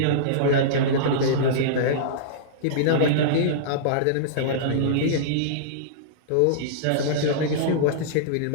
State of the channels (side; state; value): both; different; correlation -0.03